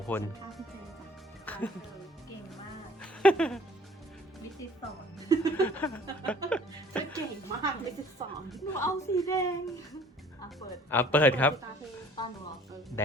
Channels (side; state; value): both; normal; correlation 0.52